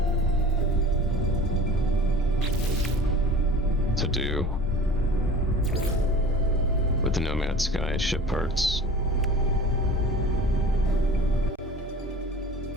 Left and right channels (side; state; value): both; normal; correlation 0.41